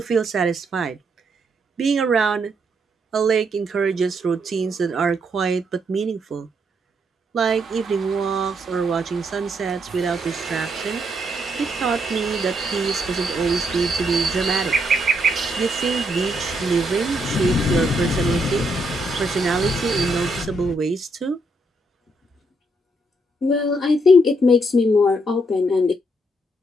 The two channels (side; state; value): both; normal; correlation 0.75